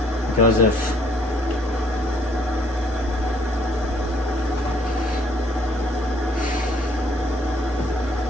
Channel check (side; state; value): both; normal; correlation 0.64